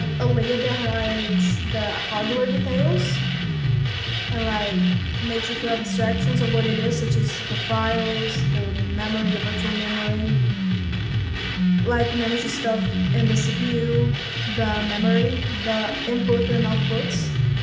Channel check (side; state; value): both; identical; correlation 1.00